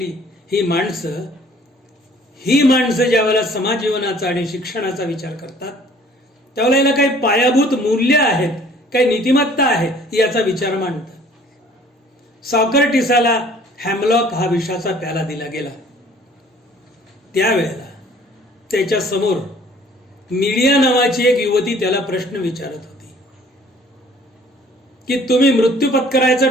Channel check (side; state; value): both; normal; correlation 0.54